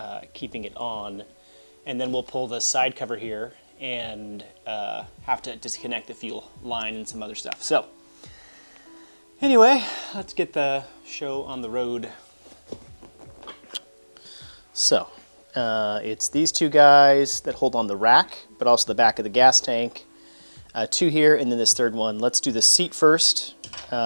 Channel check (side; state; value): both; inverted; correlation -1.00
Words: keeping it on. And then we'll pull the side cover here and have to disconnect the fuel line and some other stuff. So anyway, let's get the show on the road. So it's these two guys that hold on the rack, but also the back of the gas tank. Two here, and then this third one. Let's do the seat first.